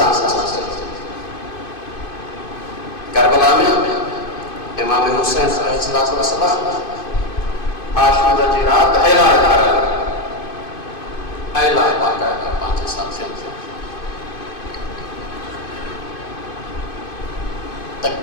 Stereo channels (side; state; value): right; late; 2.5 ms